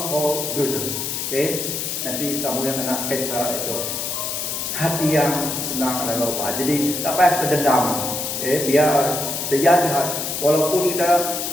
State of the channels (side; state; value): left; noise; hiss, 3 dB below the sound